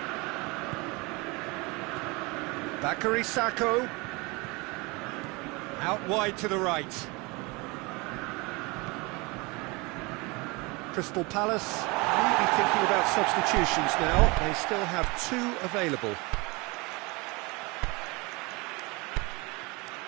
Bakary Sakho. Out wide to the right. Crystal Palace maybe thinking about substitutions now. They still have 2 available.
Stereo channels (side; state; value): left; quieter; 26.2 dB